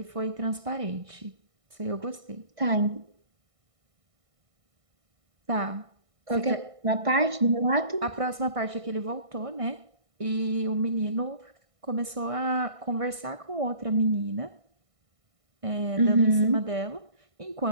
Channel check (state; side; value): late; left; 1.6 ms